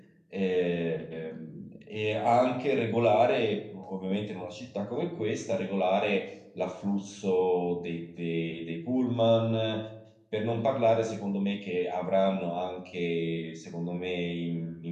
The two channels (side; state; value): both; identical; correlation 1.00